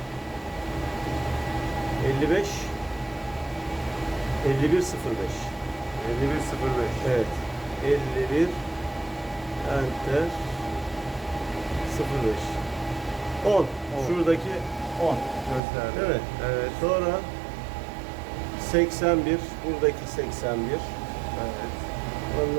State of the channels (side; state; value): left; drops out; at 15.6 s